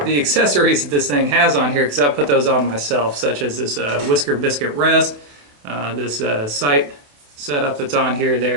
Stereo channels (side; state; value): left; late; 28 ms